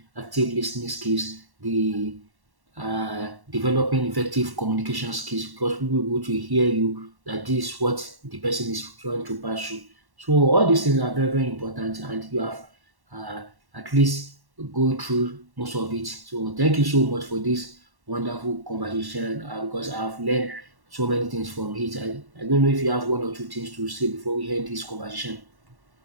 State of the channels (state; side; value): late; left; 1.1 ms